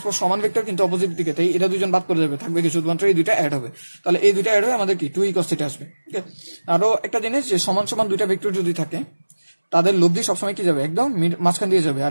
সমান ভেক্টর কিন্তু অপোজিট দিকে, তাই এটা দুজন বাদ করে যাবে, থাকবে কি শুধুমাত্র এই দুইটা অ্যাড হবে। তাহলে এই দুইটা অ্যাড হয়ে আমাদের কি 2e cos থিটা আসবে। ওকে, আরো একটা জিনিস, যে সমান সমান দুইটা ভেক্টর যদি থাকে তাদের লব্ধি সবসময় কি যাবে একদম মাঝখান দিয়ে যাবে,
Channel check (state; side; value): inverted; both; correlation -1.00